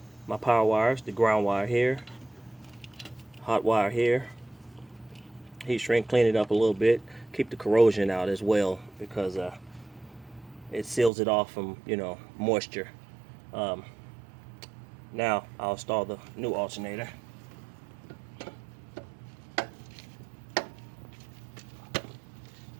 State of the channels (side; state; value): left; drops out; at 11.1 s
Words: my power wires, the ground wire here, hot wire here. Heat shrink, clean it up a little bit, keep the corrosion out as well because it seals it off from moisture. Um, Now I'll install the new alternator.